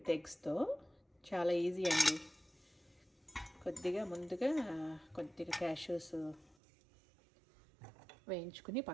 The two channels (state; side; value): drops out; left; at 6.6 s